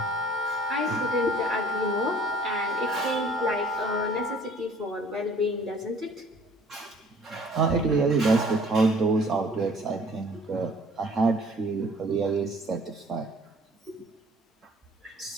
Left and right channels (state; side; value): normal; both; correlation 0.54